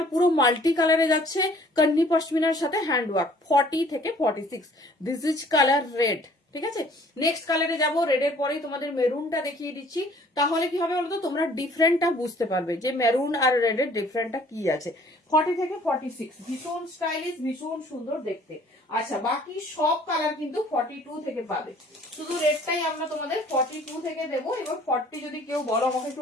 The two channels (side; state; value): both; normal; correlation 0.55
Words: পুরো মাল্টি কালারে যাচ্ছে, কন্নি পশমিনার সাথে হ্যান্ড ওয়ার্ক, 40 থেকে 46। This is colour red. ঠিক আছে, নেক্সট কালারে যাব, রেডের পরেই তোমাদের মেরুনটা দেখিয়ে দিচ্ছি। তাহলে কি হবে বলতো, তোমরা ডিফারেন্টটা বুঝতে পারবে যে মেরুন আর রেডের ডিফারেন্টটা কি আছে। 40 থেকে 46 ভীষণ স্টাইলিশ, ভীষণ সুন্দর দেখতে। আচ্ছা বাকি সব কালার কিন্তু 42 থেকে পাবে, শুধু রেডটাই আমরা তোমাদের 42 থেকে দেবো। এবার 40 যদি কেউ বলো আমাকে একটু